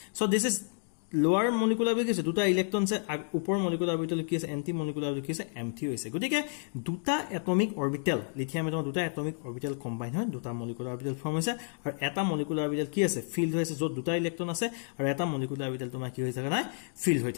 so this is lower molecular orbital আছে দুটা ইলেক্ট্ৰন আছে উপৰ molecular orbital কি আছে anti molecular orbital কি আছে empty হৈছে গতিকে দুটা atomic orbital লিথিয়াম এটম দুটা atomic orbital combine হয় দুটা molecular orbital form হৈছে আৰু এটা molecular orbital কি আছে filled হৈছে যত দুটা ইলেক্ট্ৰন আছে আৰু এটা molecular orbital তোমাৰ কি হৈ থকা নাই filled হৈ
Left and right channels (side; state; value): right; silent; 57 dB below the other